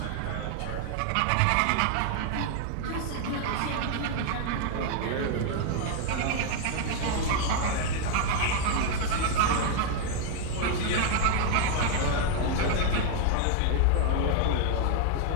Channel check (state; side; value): different; both; correlation 0.00